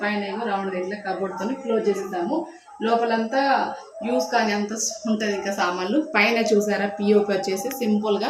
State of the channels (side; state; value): both; identical; correlation 1.00